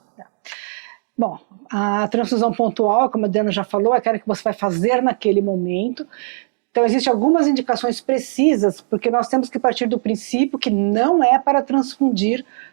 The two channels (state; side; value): silent; left; digital silence